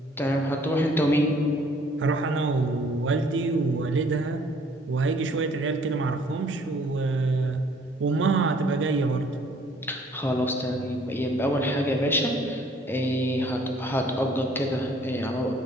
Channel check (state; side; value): normal; both; correlation 0.59